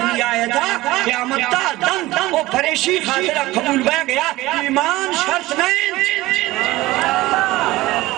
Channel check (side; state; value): left; quieter; 18.3 dB